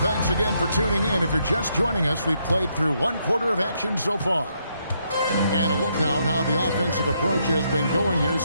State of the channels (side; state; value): both; inverted; correlation -0.76